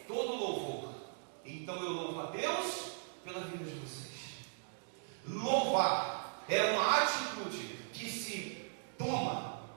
todo louvor. Então eu louvo a Deus pela vida de vocês. Louvar é uma atitude que se toma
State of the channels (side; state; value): left; silent; digital silence